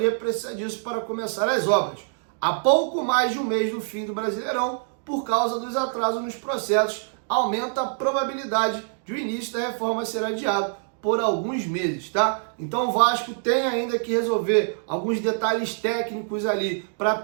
precisa disso para começar as obras. Há pouco mais de um mês do fim do Brasileirão, por causa dos atrasos nos processos, aumenta a probabilidade de o início da reforma ser adiado por alguns meses, tá? Então o Vasco tem ainda que resolver alguns detalhes técnicos ali para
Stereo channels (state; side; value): silent; left; digital silence